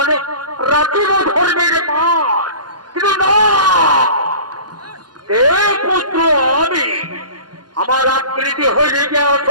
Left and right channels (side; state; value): left; late; 0.70 ms